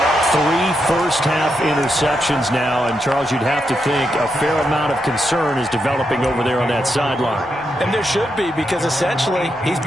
3 first-half interceptions now, and Charles, you'd have to think a fair amount of concern is developing over there on that sideline. And there should be, because essentially he's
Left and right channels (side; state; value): both; normal; correlation 0.83